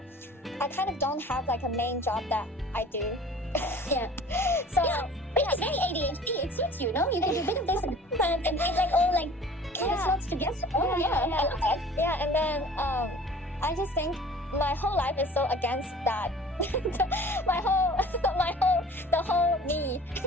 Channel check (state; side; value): normal; both; correlation 0.46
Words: I kind of don't have like a main job that I do. Yeah. So it's very ADHD. It suits you, no? You do a bit of this and it like all like kind of slots together. Oh yeah. I love that. Yeah, and then I just think my whole life is so against that. the whole me